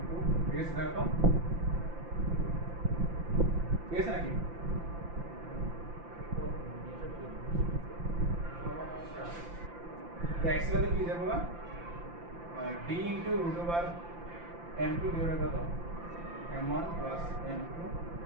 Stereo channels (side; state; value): left; late; 5.8 ms